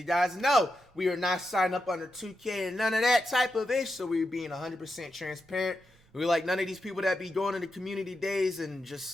guys know, we are not signed up under 2K and none of that type of ish, so we're being 100% transparent. We like none of these people that be going to the community days and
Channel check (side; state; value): both; normal; correlation 0.87